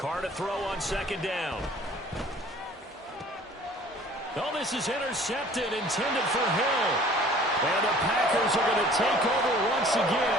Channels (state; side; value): normal; both; correlation 0.50